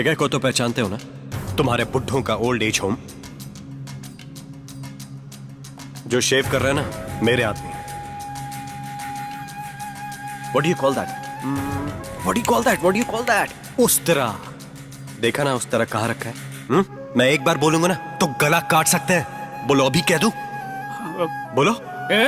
को तो पहचानते हो ना, तुम्हारे बुड्ढों का ओल्ड एज होम। जो शेव कर रहे हैं ना, मेरे आदमी। What do you call that? What do you call that? What do you call that? उस तरह देखा ना, उस तरह कहाँ रखा है? मैं एक बार बोलूंगा ना तो गला काट सकते हैं। बोलो, अभी कह दूं? बोलो।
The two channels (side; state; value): both; identical; correlation 1.00